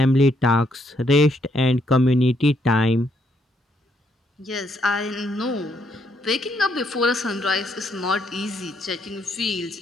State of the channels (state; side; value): normal; both; correlation 0.73